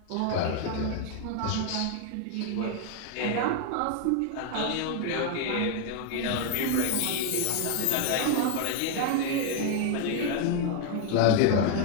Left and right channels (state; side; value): different; both; correlation 0.01